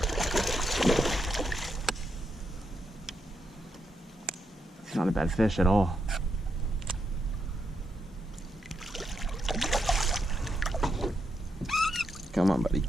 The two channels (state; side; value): normal; both; correlation 0.81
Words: It's not a bad fish at all. Come on, buddy.